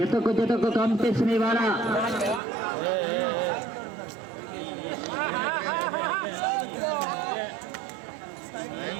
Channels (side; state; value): left; drops out; at 2.4 s